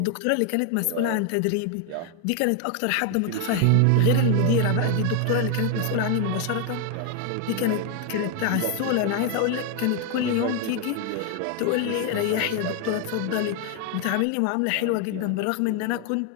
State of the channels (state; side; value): different; both; correlation 0.01